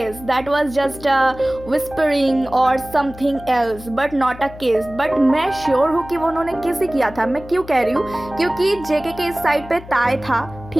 that was just a whispering or something else, but not a kiss. but मैं sure हूँ कि वो उन्होंने किस ही किया था. मैं क्यों कह रही हूँ, क्योंकि जेके के इस साइड पे ताई था,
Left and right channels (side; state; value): left; noise; hum, 16 dB below the sound